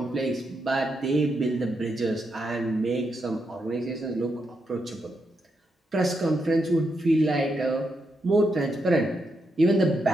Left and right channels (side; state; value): both; normal; correlation 0.82